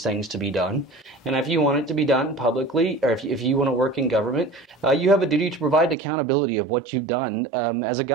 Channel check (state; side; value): drops out; left; at 6.0 s